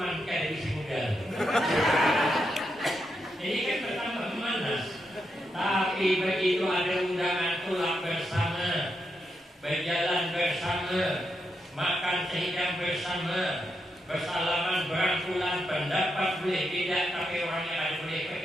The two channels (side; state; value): both; normal; correlation 0.83